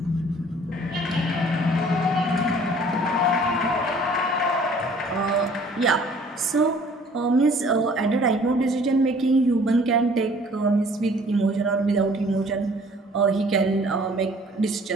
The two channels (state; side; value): normal; both; correlation 0.54